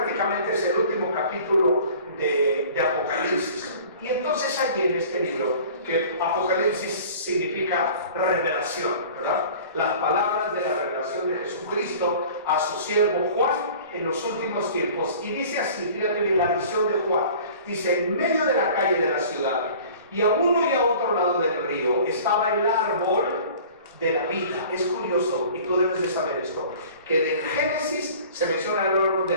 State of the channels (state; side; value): inverted; both; correlation -0.45